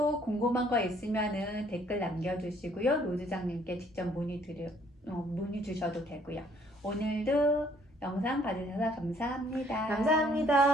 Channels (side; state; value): both; normal; correlation 0.63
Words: 궁금한 거 있으면은 댓글 남겨주시고요. 로드장님께 직접 문의 주셔도 되고요. 오늘도 영상 봐주셔서 감사합니다.